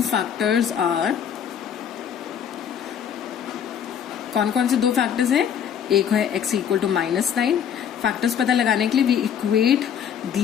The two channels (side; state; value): right; quieter; 8.5 dB